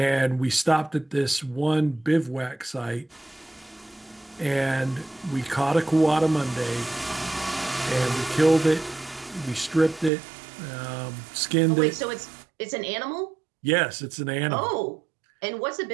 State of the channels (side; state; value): left; drops out; at 10.1 s